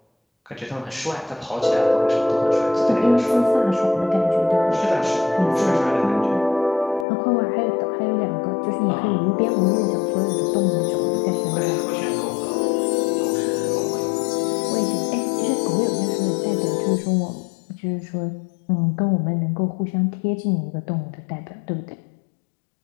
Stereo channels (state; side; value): drops out; right; at 7.1 s